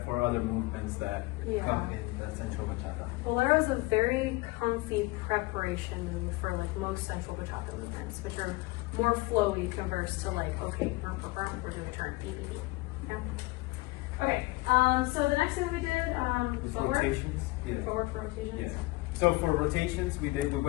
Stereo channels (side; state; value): right; quieter; 22.2 dB